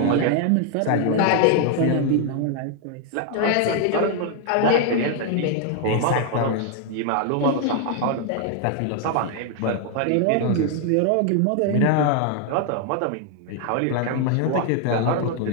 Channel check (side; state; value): both; different; correlation 0.00